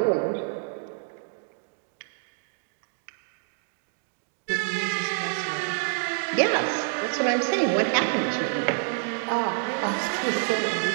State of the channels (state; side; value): silent; left; digital silence